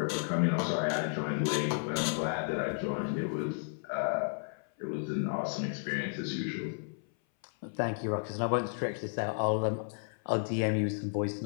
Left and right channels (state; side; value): silent; right; 56 dB below the other